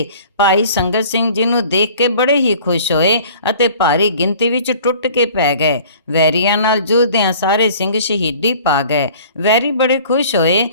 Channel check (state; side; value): inverted; both; correlation -0.49